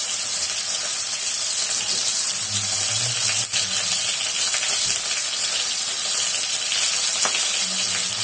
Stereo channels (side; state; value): both; identical; correlation 1.00